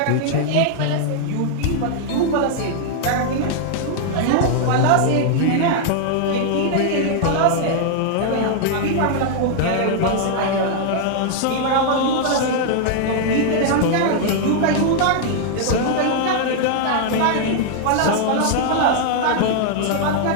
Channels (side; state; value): both; different; correlation 0.00